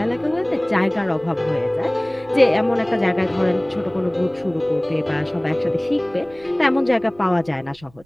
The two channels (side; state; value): right; noise; rumble, 27 dB below the sound